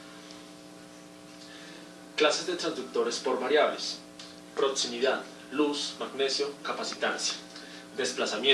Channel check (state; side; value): identical; both; correlation 1.00